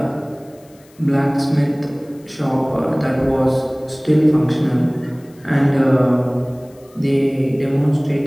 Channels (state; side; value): noise; left; hiss, 30 dB below the sound